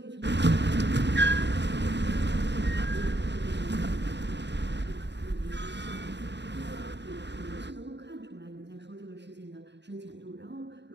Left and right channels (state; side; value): late; left; 0.51 ms